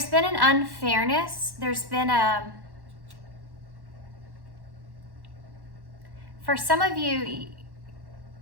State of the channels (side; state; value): left; late; 1.1 ms